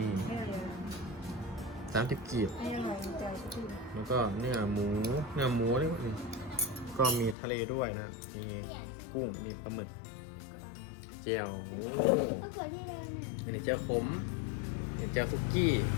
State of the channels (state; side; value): drops out; right; at 7.4 s